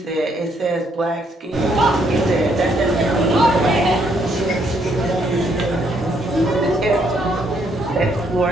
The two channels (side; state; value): both; normal; correlation 0.71